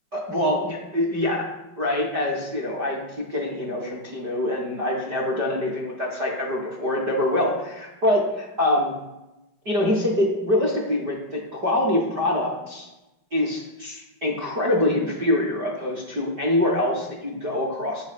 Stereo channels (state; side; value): late; left; 5.1 ms